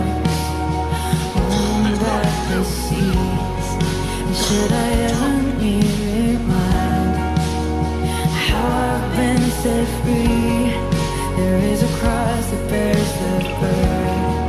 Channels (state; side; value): identical; both; correlation 1.00